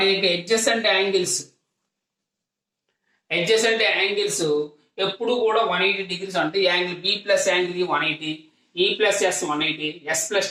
యొక్క ఎడ్జసెంట్ యాంగిల్స్ ఎప్పుడు కూడా 180 డిగ్రీస్ అంటే angle B plus angle 180, E plus S 180, S plus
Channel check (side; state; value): both; identical; correlation 1.00